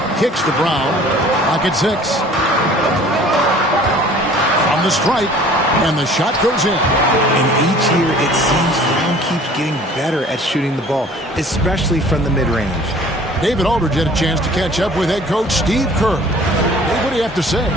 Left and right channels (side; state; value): both; normal; correlation 0.50